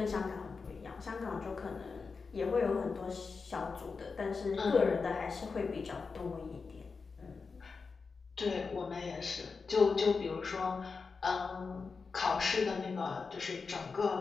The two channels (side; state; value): right; quieter; 4.8 dB